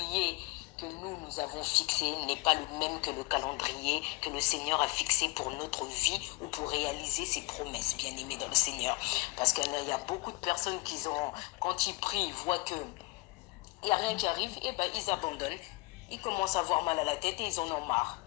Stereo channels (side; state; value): right; quieter; 24.2 dB